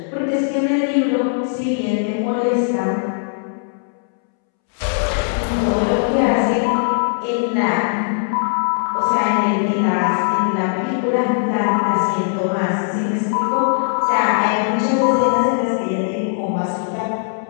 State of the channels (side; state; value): right; silent; 66 dB below the other